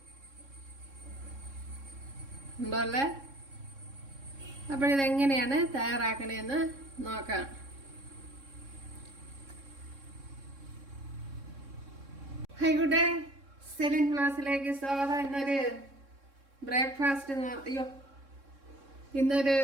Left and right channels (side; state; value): left; late; 3.6 ms